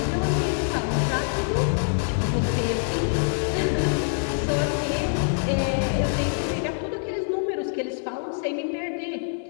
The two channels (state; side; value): silent; right; digital silence